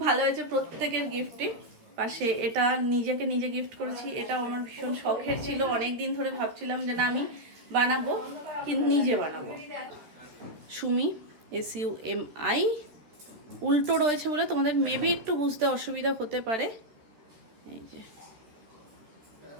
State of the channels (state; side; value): late; left; 13 ms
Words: ভালো হয়েছে প্রত্যেকের গিফটই। পাশে এটা নিজেকে নিজে গিফট করেছি, এটা আমার ভীষণ শখের ছিল। অনেক দিন ধরে ভাবছিলাম যে না আমি বানাবো, কিন্তু নিজে বানাবো। সুমি, SUMI, উল্টো রয়েছে বলে তোমাদের মেবি একটু বুঝতে অসুবিধা হতে পারে। এই যে